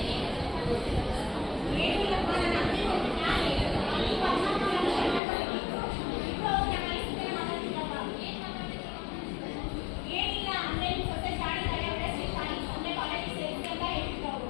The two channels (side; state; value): right; drops out; at 5.2 s